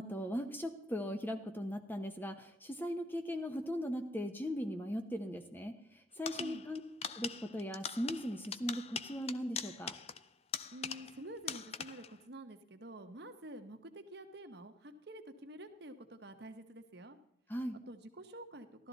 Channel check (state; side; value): normal; both; correlation 0.70